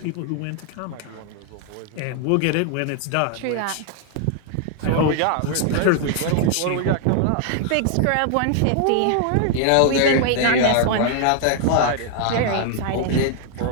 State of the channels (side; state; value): both; different; correlation 0.00